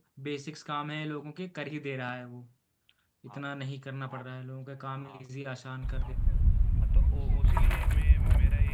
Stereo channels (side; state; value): both; identical; correlation 1.00